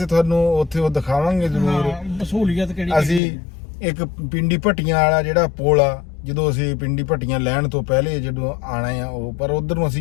ਤੁਹਾਨੂੰ ਉੱਥੇ ਉਹ ਦਿਖਾਵਾਂਗੇ ਜ਼ਰੂਰ। ਸਹੂਲੀਅਤ ਕਿਹੜੀ ਅਸੀਂ ਇੱਕ ਪਿੰਡੀ ਭੱਟੀਆਂ ਵਾਲਾ ਜਿਹੜਾ ਪੁਲ ਆ, ਜਦੋਂ ਅਸੀਂ ਪਿੰਡੀ ਭੱਟੀਆਂ ਲੈਣ ਤੋਂ ਪਹਿਲੇ ਜਦੋਂ ਆਣਾ ਆ ਉਹ, ਪਰ ਉਧਰ ਨੂੰ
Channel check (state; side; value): drops out; right; at 3.2 s